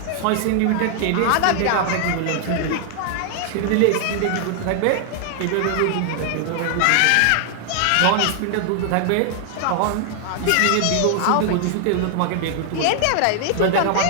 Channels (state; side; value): different; both; correlation 0.00